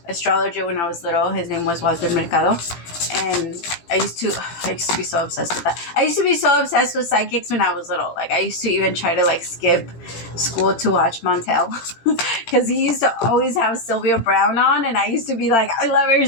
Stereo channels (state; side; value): late; right; 18 ms